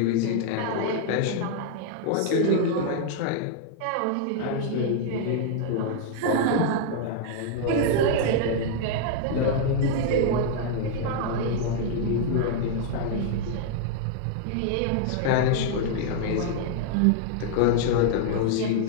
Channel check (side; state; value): both; different; correlation -0.01